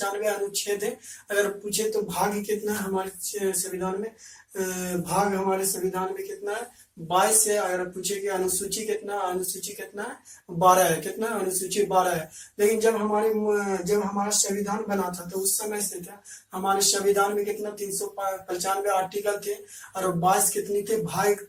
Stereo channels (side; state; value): both; identical; correlation 1.00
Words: अनुच्छेद है। अगर पूछे तो भाग कितना है हमारे संविधान में? भाग हमारे संविधान में कितना है? 22 है। अगर पूछे कि अनुसूची कितना, अनुसूची कितना है? 12 है। कितना? अनुसूची 12 है। लेकिन जब हमारा संविधान बना था तो उस समय से था हमारे संविधान में कितना 395 आर्टिकल थे और 22 कितनी थे? भाग